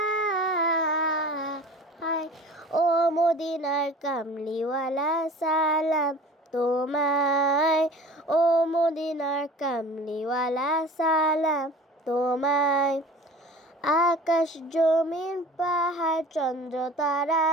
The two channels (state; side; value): normal; both; correlation 0.42